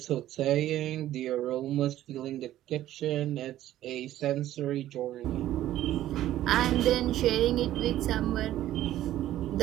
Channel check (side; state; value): left; quieter; 13.5 dB